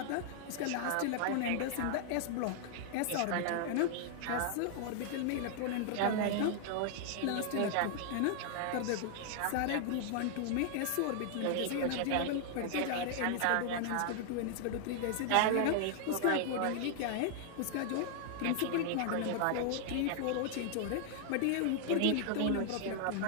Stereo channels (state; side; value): different; both; correlation 0.00